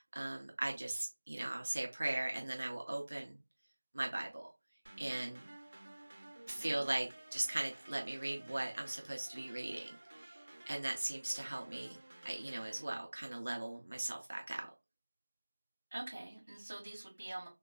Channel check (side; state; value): both; inverted; correlation -1.00